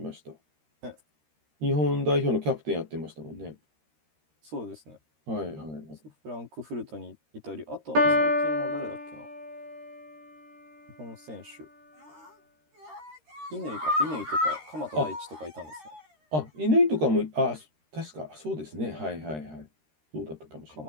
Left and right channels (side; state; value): left; late; 13 ms